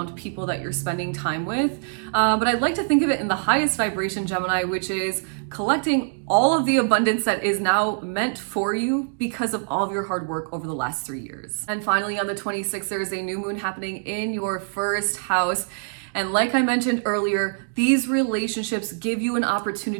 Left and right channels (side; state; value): left; silent; digital silence